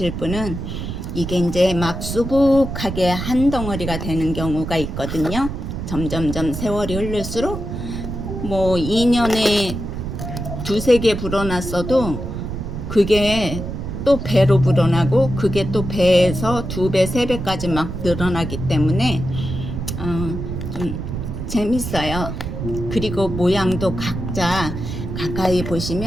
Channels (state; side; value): noise; right; rumble, 6 dB below the sound